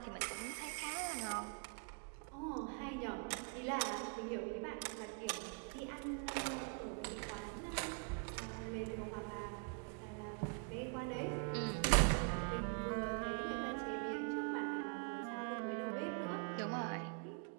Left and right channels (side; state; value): left; quieter; 38.5 dB